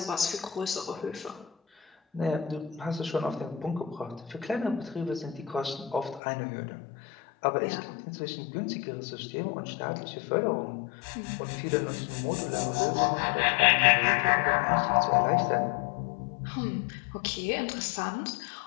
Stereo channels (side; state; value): right; drops out; at 6.2 s